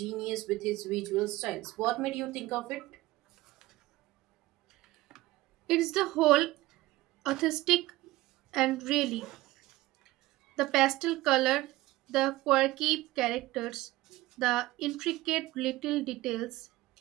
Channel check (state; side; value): quieter; left; 18.3 dB